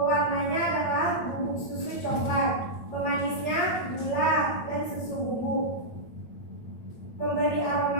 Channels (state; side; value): late; right; 8.9 ms